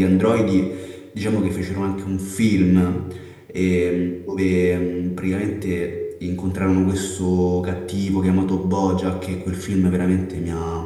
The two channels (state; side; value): identical; both; correlation 1.00